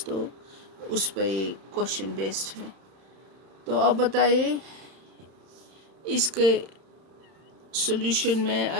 तो उस पर ये क्वेश्चन बेस्ड है। तो अब बताइए इसके सॉल्यूशन में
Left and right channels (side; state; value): left; late; 31 ms